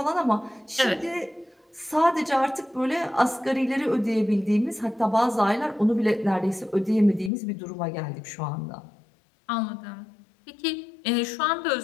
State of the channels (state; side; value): drops out; right; at 7.3 s